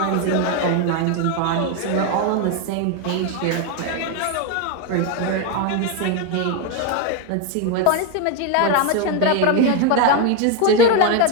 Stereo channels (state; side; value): different; both; correlation 0.02